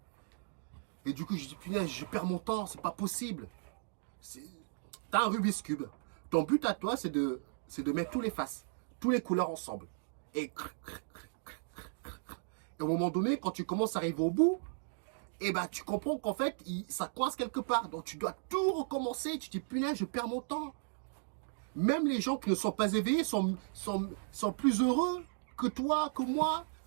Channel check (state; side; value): silent; left; digital silence